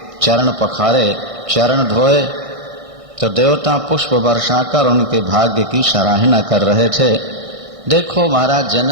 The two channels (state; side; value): late; left; 1.6 ms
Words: चरण पखारे, चरण धोए, तो देवता पुष्प वर्षाकर उनके भाग्य की सराहना कर रहे थे। देखो महाराज